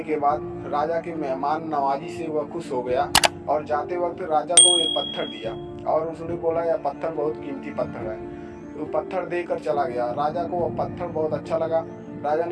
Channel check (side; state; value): both; identical; correlation 1.00